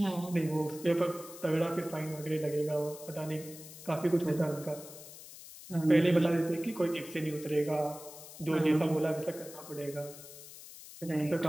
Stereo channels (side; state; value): left; noise; hiss, 15 dB below the sound